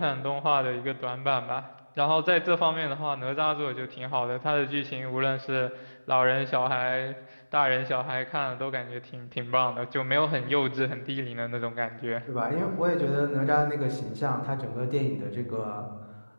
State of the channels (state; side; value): inverted; both; correlation -1.00